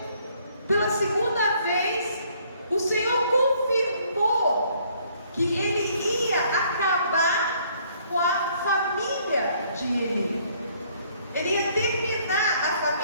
pela segunda vez, o Senhor confirmou que ele ia acabar com a família de Eli. Ele ia terminar a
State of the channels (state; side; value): inverted; both; correlation -0.64